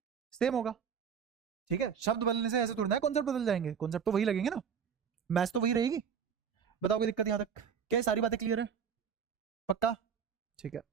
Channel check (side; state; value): left; quieter; 7.2 dB